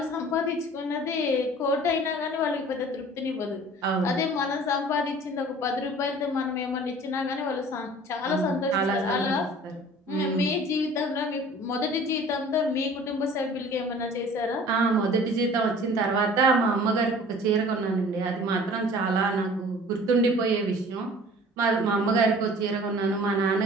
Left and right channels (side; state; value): both; normal; correlation 0.47